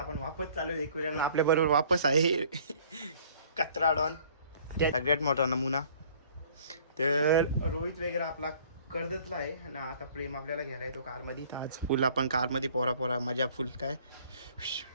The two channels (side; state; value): both; inverted; correlation -0.54